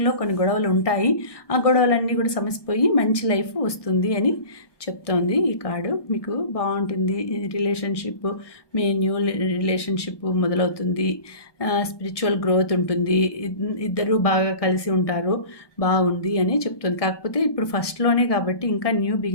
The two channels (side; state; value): right; late; 1.2 ms